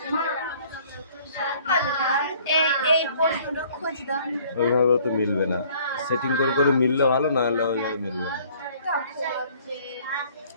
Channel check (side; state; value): both; inverted; correlation -0.57